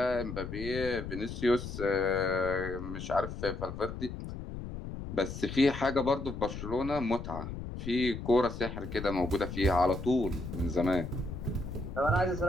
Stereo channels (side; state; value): left; noise; rumble, 8 dB below the sound